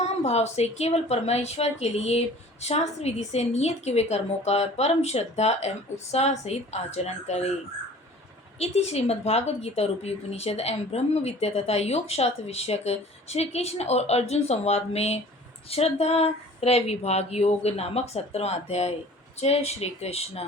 भाव से केवल परमेश्वर के लिए शास्त्र विधि से नियत किए हुए कर्मों का परम श्रद्धा एवं उत्साह सहित आचरण करे। इति श्रीमद्भागवत गीता रूपी उपनिषद एवं ब्रह्म विद्या तथा योग शास्त्र विषयक श्री कृष्ण और अर्जुन संवाद में श्रद्धा त्रय विभाग योग नामक 17वां अध्याय। जय श्री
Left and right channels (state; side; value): normal; both; correlation 0.47